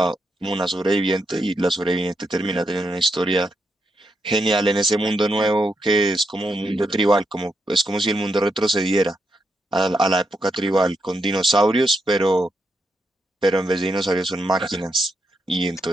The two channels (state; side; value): normal; both; correlation 0.82